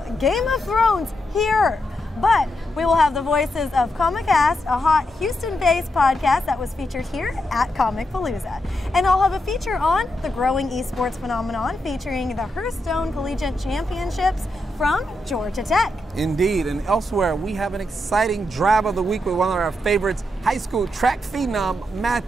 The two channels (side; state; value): both; normal; correlation 0.83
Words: Game of Thrones here. But we will have the voices of Comicast, a hot Houston-based podcast that was featured here at Comicpalooza. And I'll have a feature on the growing esports phenomenon featuring the Hearthstone Collegiate Championships from Georgia Tech. Indeed, and elsewhere we have an exciting drive of the week with one of our favorites, high school track phenom